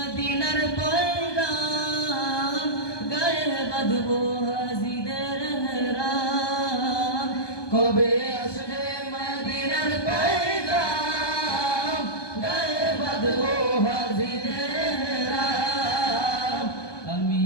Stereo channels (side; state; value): right; late; 1.2 ms